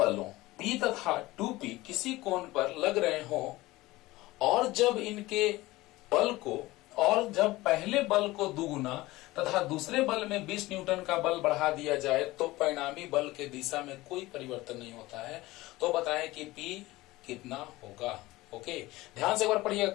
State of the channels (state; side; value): quieter; right; 19.0 dB